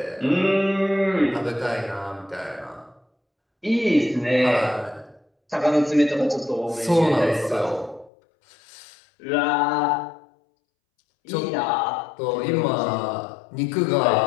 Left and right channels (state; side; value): drops out; right; at 8.1 s